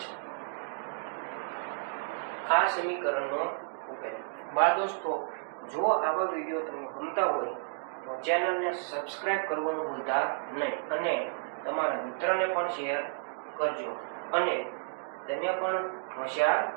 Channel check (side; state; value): left; silent; digital silence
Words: આ સમીકરણનો ઉકેલ બાળ દોસ્તો જો આવા વિડીયો તમને ગમતા હોય તો ચેનલને સબસ્ક્રાઇબ કરવાનું ભૂલતા નહીં અને તમારા મિત્રને પણ શેર કરજો અને તમે પણ હોશિયાર